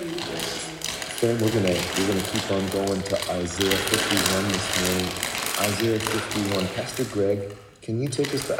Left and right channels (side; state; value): both; identical; correlation 1.00